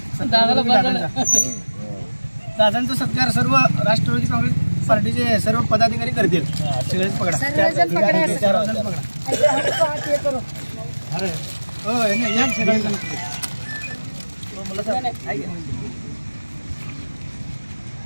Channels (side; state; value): both; inverted; correlation -1.00